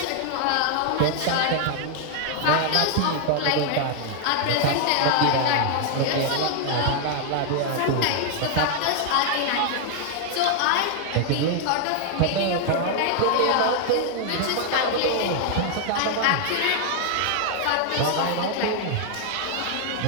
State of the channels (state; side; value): different; both; correlation 0.00